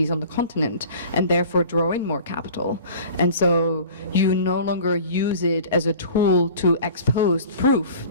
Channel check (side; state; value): both; inverted; correlation -0.43